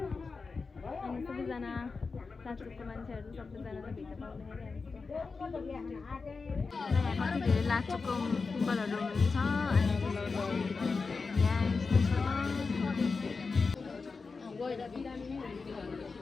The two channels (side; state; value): right; quieter; 4.5 dB